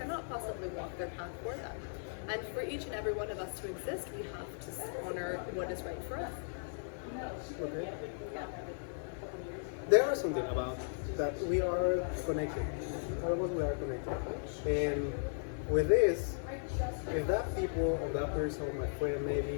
possibly walk their path for them. And for each and every one of us to exist, we have to honor what is right for us. Okay. There are something about that we are connected. All of us we are connected. And with this, if that people or that person or my friend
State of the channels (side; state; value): right; silent; 53 dB below the other